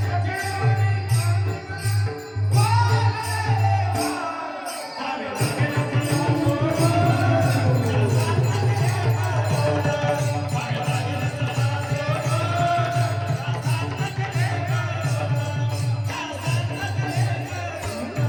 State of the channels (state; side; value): identical; both; correlation 1.00